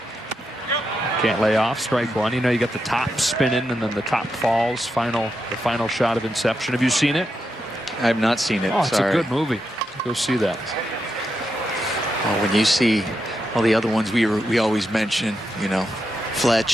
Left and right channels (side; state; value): both; normal; correlation 0.85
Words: Can't lay off. Strike one. You know, you got the top spinning and then the top falls. The final shot of Inception. Have you seen it? I have not seen it. Oh, it's Sorry. a good movie. Go see that. Oh, when you see all the other ones we always mention, you know,